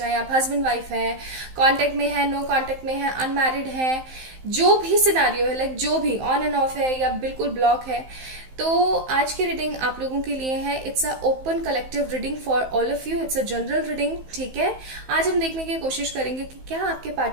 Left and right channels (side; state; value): left; late; 15 ms